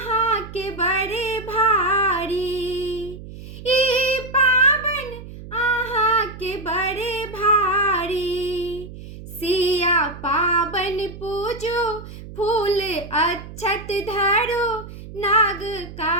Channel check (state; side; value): noise; right; hum, 14 dB below the sound